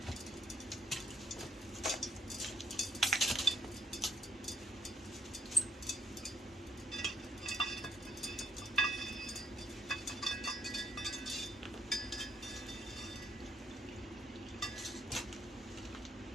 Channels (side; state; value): both; normal; correlation 0.73